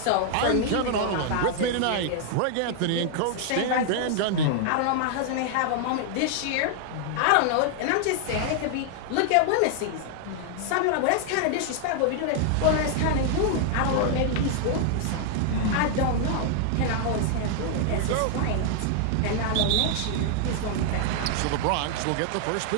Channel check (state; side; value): different; both; correlation 0.00